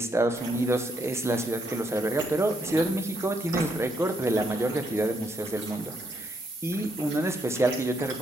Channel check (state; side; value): normal; both; correlation 0.76